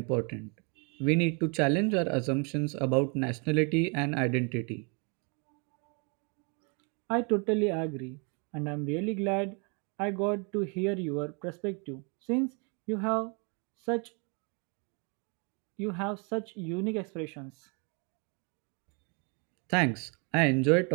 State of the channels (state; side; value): quieter; left; 34.8 dB